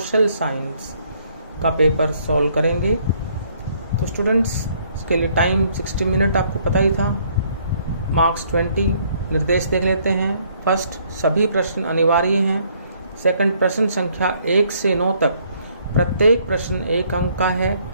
साइंस का पेपर सॉल्व करेंगे। तो स्टूडेंट्स, इसके लिए टाइम 60 मिनट आपको पता ही था, मार्क्स 20। निर्देश देख लेते हैं। फर्स्ट, सभी प्रश्न अनिवार्य हैं। सेकंड, प्रश्न संख्या 1 से 9 तक प्रत्येक प्रश्न 1 अंक का है।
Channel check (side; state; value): both; inverted; correlation -0.65